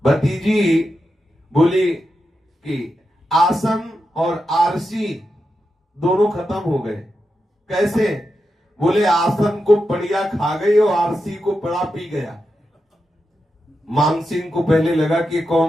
भतीजी बोली कि आसन और आरसी दोनों खत्म हो गए। कैसे? बोले आसन को पड़िया खा गई और आरसी को पड़ा पी गया। मान सिंह को पहले लगा कि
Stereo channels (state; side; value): normal; both; correlation 0.88